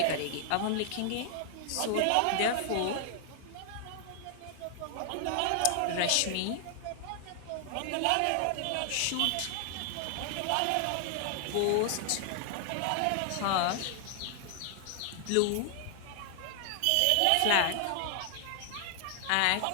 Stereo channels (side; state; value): both; different; correlation 0.00